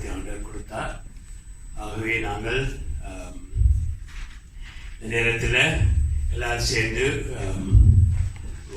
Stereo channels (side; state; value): both; identical; correlation 1.00